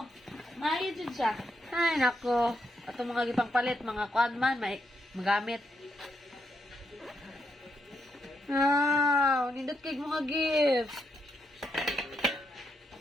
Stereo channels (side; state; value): both; normal; correlation 0.80